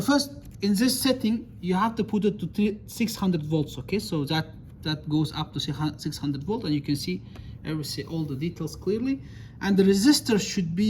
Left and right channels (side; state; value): both; identical; correlation 1.00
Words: in this setting you have to put it to 600 volts, okay? So that goes up to 600 volt, and you can see all the details clearly. And the resistor should